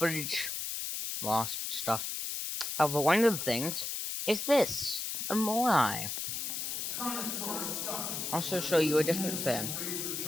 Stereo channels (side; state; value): left; noise; hiss, 3 dB below the sound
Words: lost stuff. However, one of the things is this. A Moai. Also show you a different thing.